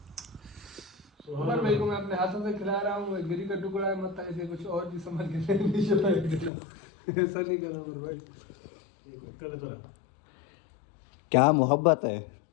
उमर भाई को मैं अपने हाथों से खिला रहा हूँ, गिरी का टुकड़ा है, मत ऐसे कुछ और भी समझ के नहीं चला। ऐसा नहीं करो उमर भाई। क्या मोहब्बत है।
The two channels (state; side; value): drops out; right; at 6.5 s